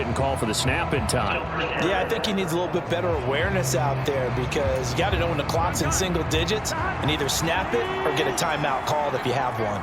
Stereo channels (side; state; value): both; identical; correlation 1.00